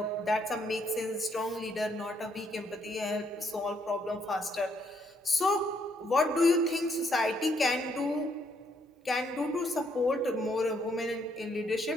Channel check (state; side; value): normal; both; correlation 0.72